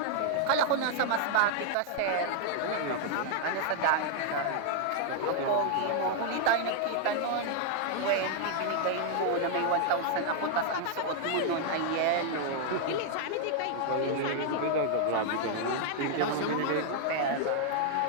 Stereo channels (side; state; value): both; different; correlation 0.00